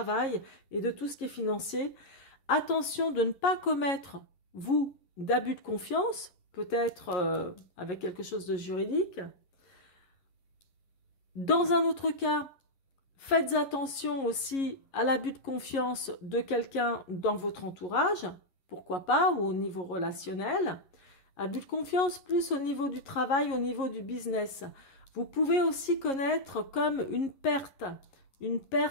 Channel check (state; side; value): late; right; 11 ms